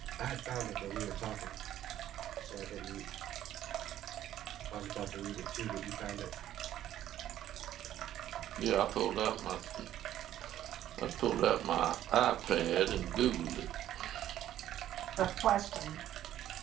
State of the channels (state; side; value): quieter; left; 12.2 dB